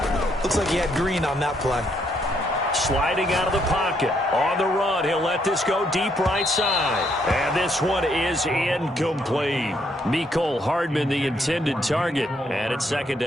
Looks like he had green on that play. Sliding out of the pocket. On the run, he'll let this go deep right side. And this one is incomplete. Mecole Hardman, the intended target. And it's second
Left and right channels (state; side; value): normal; both; correlation 0.73